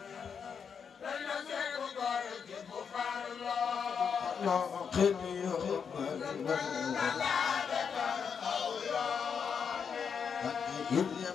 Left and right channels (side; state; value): right; quieter; 6.6 dB